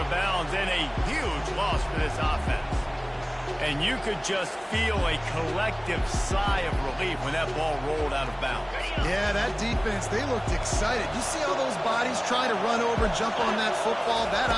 bounds, and a huge loss for this offense. And you could just feel a collective sigh of relief when that ball rolled out of bounds. Yeah, that defense, they looked excited. You see all those bodies trying to run over and jump on that football? That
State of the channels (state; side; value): identical; both; correlation 1.00